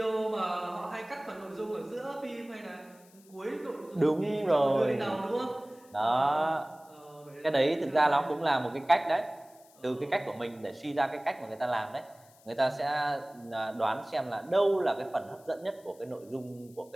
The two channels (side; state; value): left; noise; hiss, 27 dB below the sound